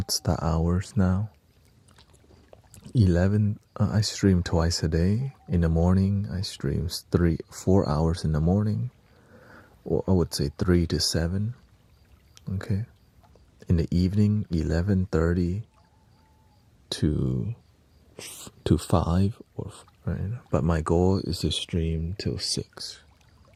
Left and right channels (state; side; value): identical; both; correlation 1.00